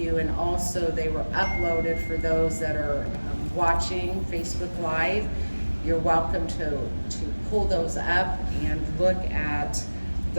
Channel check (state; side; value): inverted; both; correlation -1.00